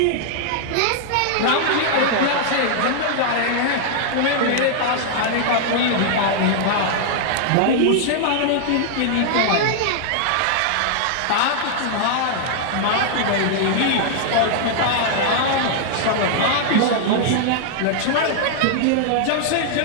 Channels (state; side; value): different; both; correlation -0.01